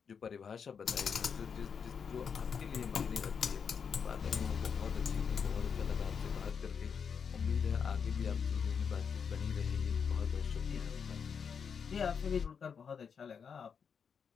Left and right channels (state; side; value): quieter; right; 6.6 dB